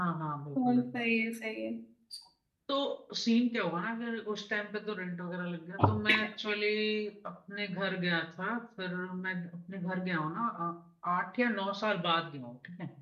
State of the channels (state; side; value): identical; both; correlation 1.00